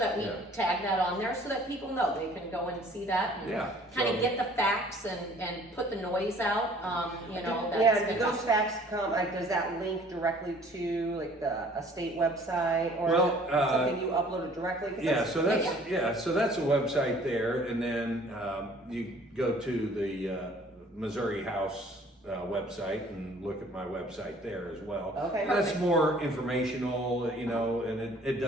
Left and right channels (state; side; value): normal; both; correlation 0.54